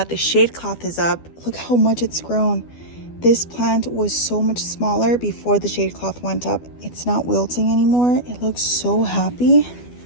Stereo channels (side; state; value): right; late; 12 ms